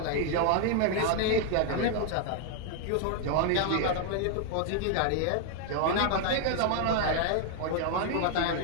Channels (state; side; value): different; both; correlation 0.00